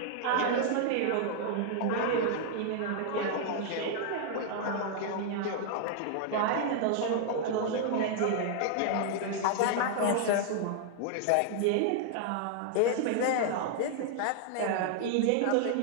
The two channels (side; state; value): both; different; correlation -0.01